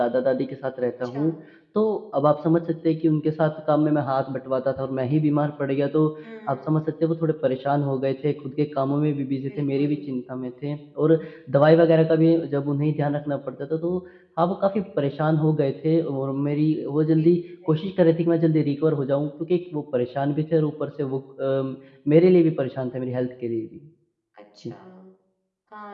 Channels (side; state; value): both; identical; correlation 1.00